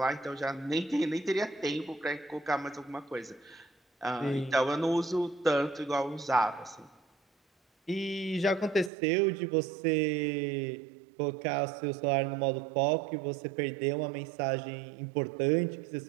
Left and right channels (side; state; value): left; drops out; at 8.9 s